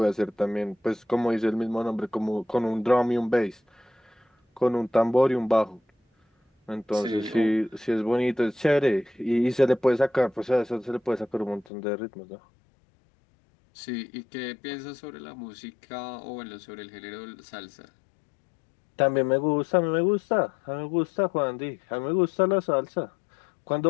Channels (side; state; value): right; drops out; at 11.7 s